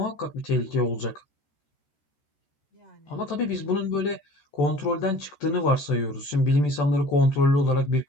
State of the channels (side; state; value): right; late; 14 ms